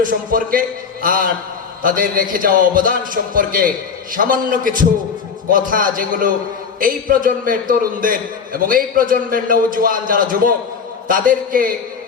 সম্পর্কে আর তাদের রেখে যাওয়া অবদান সম্পর্কে সামান্য কিছু কথা, যেগুলো এই প্রজন্মের তরুণদের এবং এই প্রজন্মের নওজোয়ান যারা যুবক তাদেরকে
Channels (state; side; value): quieter; right; 6.0 dB